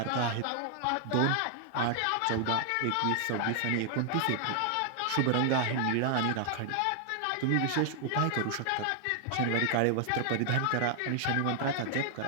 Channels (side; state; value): both; different; correlation 0.00